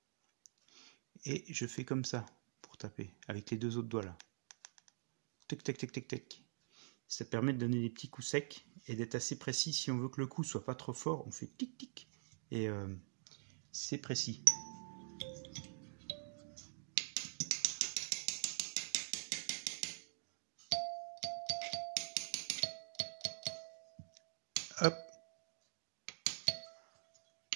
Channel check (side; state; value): left; silent; digital silence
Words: et je fais comme ça pour taper, avec les deux autres doigts là. Tac, tac, tac, tac, tac. Ça permet de donner des petits coups secs et d'être assez précis. Si on veut que le coup soit pas trop fort, on fait tic, tic, et c'est précis. Hop.